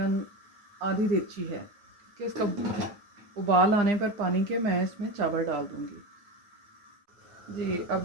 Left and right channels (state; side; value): late; left; 9.8 ms